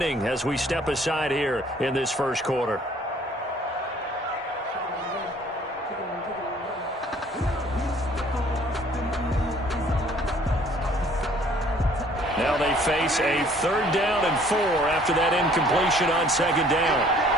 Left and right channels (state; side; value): normal; both; correlation 0.57